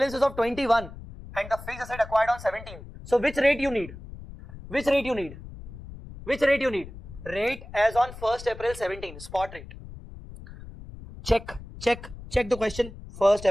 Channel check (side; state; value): left; noise; rumble, 14 dB below the sound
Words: is of 21 and the fixed asset acquired on 17. So which rate you need? Which rate you need? Which rate you need? Rate as on 1st April 17, spot rate. Check the question. 1st